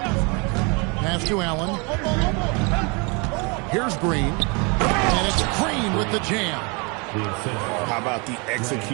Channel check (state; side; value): quieter; left; 31.0 dB